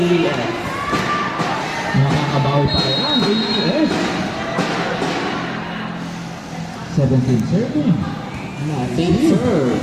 Nakakabawi pa yan. AES. 17 serving. Team serve.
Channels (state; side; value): identical; both; correlation 1.00